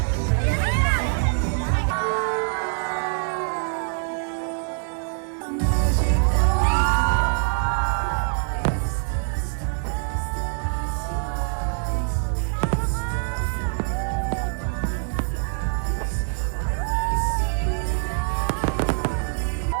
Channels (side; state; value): left; silent; 61 dB below the other